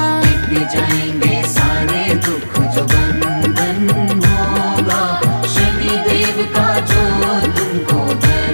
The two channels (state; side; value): inverted; both; correlation -1.00